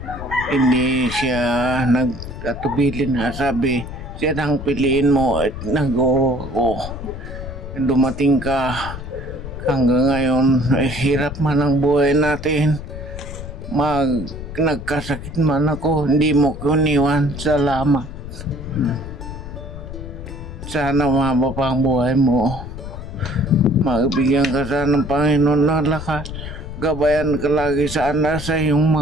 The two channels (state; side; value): noise; left; rumble, 9 dB below the sound